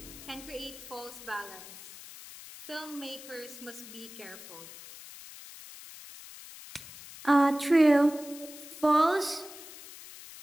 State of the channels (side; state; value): left; noise; hiss, 15 dB below the sound